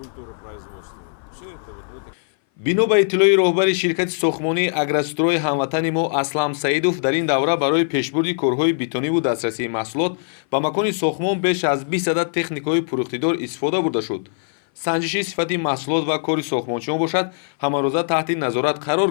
производства. Все это вот в этой... бино ба иттилои роҳбари ширкати сохмонии Агрострой ҳамватани мо Аслам Саидов, дар ин давра барои пешбурди корҳои битониву дастрасии маҳсулот ба макони сохмон беш аз 20 адад техникаҳои пурухтидор истифода бурда шуд. санҷиши сифати маҳсулот ва кори сохмончиён бошад, ҳамарӯза таҳти назорат қарор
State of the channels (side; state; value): right; silent; 59 dB below the other